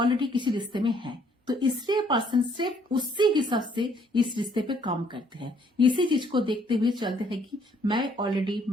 किसी रिश्ते में है, तो इसलिए पर्सन सिर्फ उसी हिसाब से इस रिश्ते पे काम करते हैं, इसी चीज को देखते हुए चलते हैं कि मैं ऑलरेडी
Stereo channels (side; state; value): both; normal; correlation 0.64